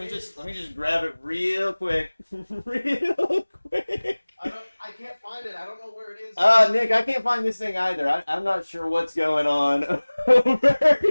just grab it real quick. I can't find it. I don't know where it is. Nick, I can't find this thing either. I'm not sure what's going on.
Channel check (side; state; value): both; inverted; correlation -1.00